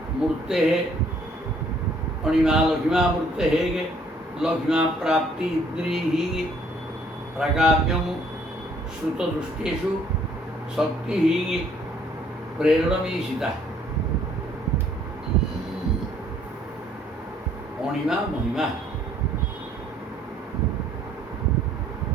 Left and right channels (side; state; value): both; normal; correlation 0.62